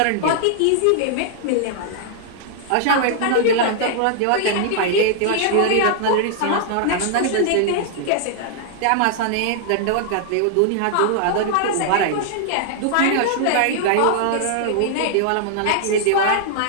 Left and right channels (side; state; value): both; different; correlation -0.01